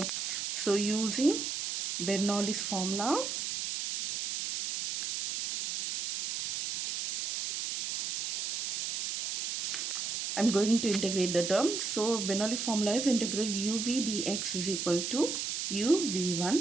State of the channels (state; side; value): noise; right; hiss, 2 dB below the sound